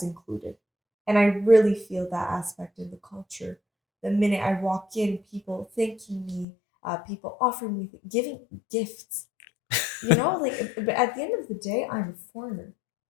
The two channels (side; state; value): right; drops out; at 6.5 s